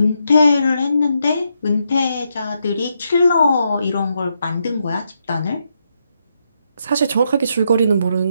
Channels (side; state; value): both; inverted; correlation -0.80